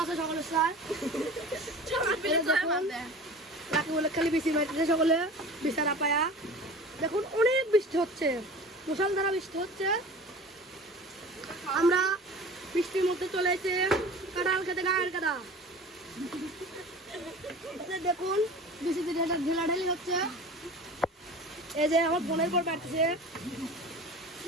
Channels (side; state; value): both; normal; correlation 0.39